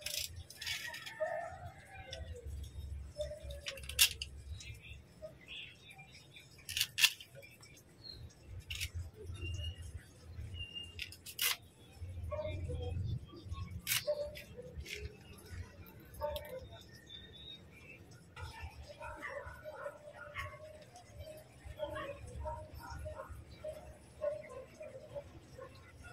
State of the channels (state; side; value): identical; both; correlation 1.00